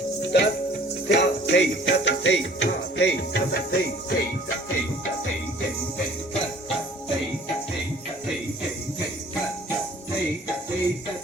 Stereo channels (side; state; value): both; normal; correlation 0.52